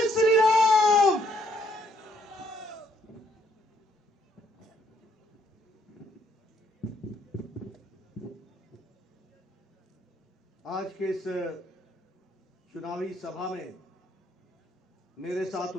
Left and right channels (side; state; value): both; normal; correlation 0.69